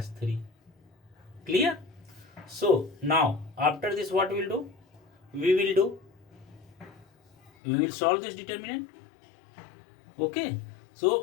3. Clear? So now after this what we will do? We will solve this determinant. Okay,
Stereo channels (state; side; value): drops out; right; at 7.5 s